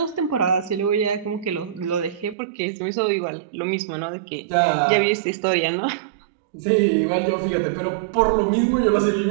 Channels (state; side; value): drops out; left; at 2.4 s